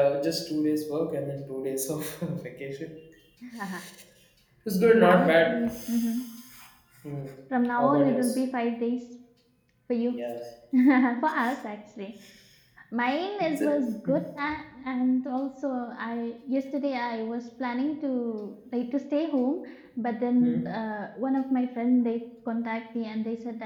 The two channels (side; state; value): both; identical; correlation 1.00